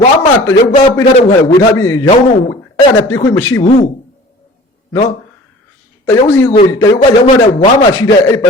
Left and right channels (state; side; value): normal; both; correlation 0.45